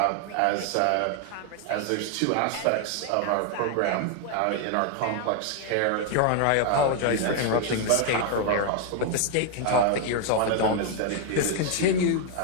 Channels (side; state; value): both; different; correlation 0.00